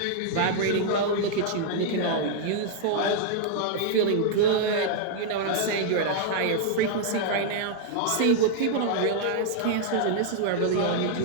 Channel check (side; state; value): both; different; correlation 0.00